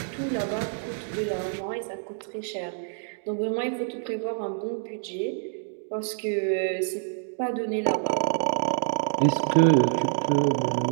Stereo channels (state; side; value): silent; left; digital silence